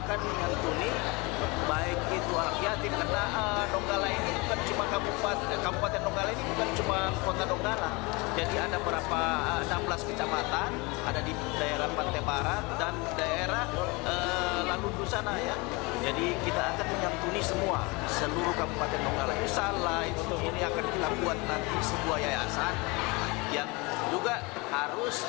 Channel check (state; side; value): quieter; right; 26.5 dB